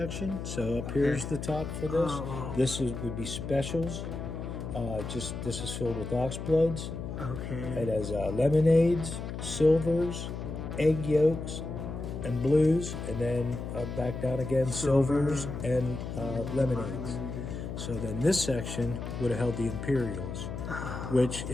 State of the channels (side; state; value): left; noise; hum, 6 dB below the sound